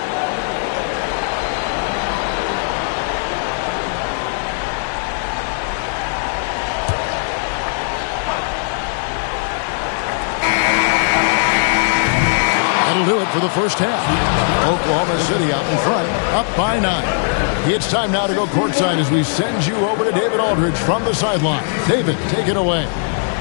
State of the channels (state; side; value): silent; right; 65 dB below the other